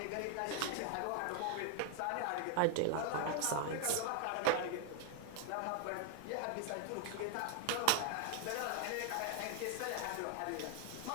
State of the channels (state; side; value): different; both; correlation 0.01